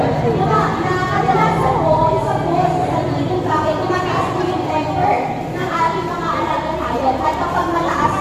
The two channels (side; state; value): both; identical; correlation 1.00